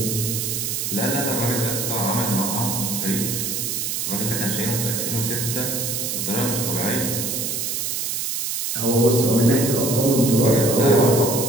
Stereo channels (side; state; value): right; noise; hiss, 2 dB below the sound